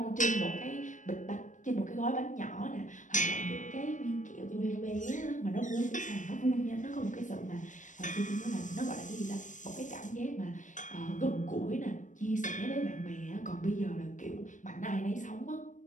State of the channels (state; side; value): late; right; 0.37 ms